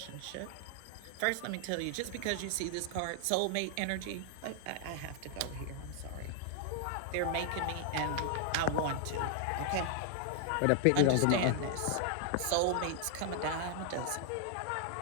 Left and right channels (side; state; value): both; different; correlation 0.00